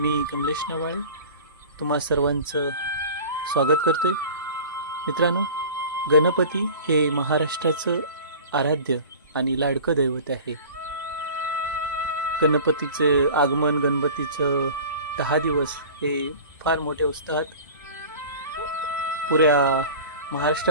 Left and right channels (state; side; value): inverted; both; correlation -0.39